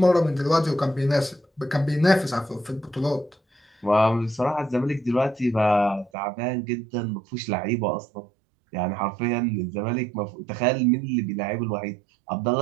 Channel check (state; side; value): drops out; left; at 6.1 s